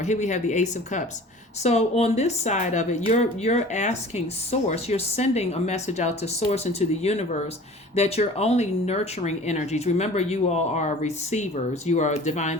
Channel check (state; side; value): normal; both; correlation 0.44